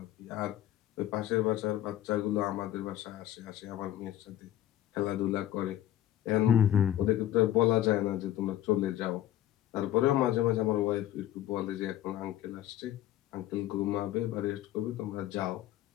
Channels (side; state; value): right; quieter; 12.7 dB